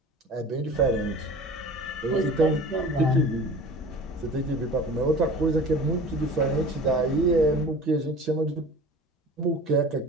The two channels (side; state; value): both; normal; correlation 0.40